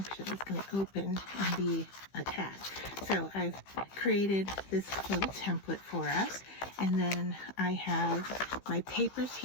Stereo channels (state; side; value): late; right; 15 ms